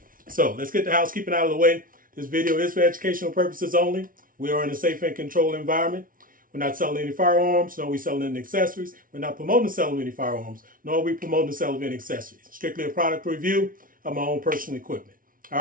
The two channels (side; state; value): left; late; 0.40 ms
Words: So let's get the housekeeping out of the way. This video is for educational purposes only. We are in a safe and controlled environment. We're not selling any firearms, nor are we selling any accessories. We're not promoting the sale of any firearms, nor are we promoting the sale of any accessories. Strictly a product review of my own personal equipment. All